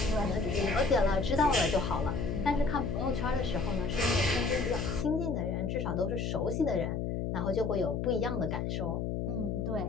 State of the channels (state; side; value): noise; left; hum, 1 dB below the sound